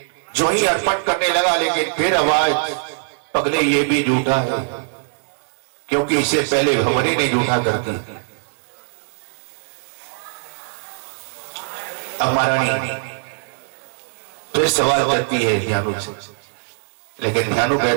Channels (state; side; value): silent; left; digital silence